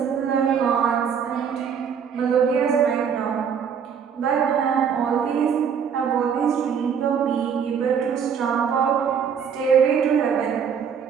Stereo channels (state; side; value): quieter; left; 7.2 dB